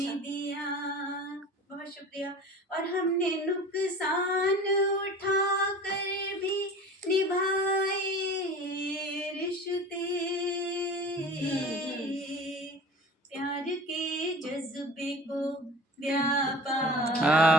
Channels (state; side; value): normal; both; correlation 0.39